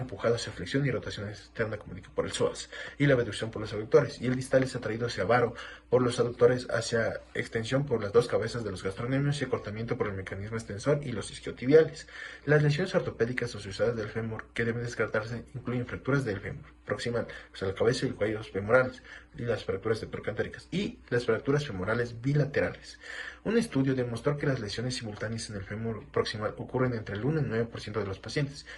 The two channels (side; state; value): both; identical; correlation 1.00